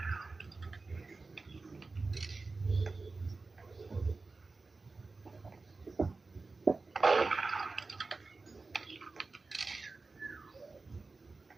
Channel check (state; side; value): quieter; left; 3.8 dB